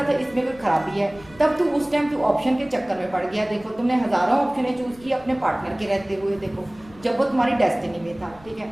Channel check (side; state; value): left; noise; rumble, 23 dB below the sound